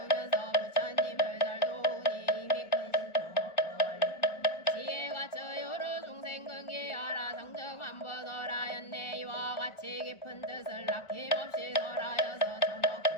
부처님을 잘 도우니 이미 큰 신통 없고 원리 지혜가 저 여러 중생 근기하라 성정한 벗어라였네 이와 같이 깊은 뜻을 아낌없이 설하여서 전어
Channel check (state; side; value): late; right; 1.4 ms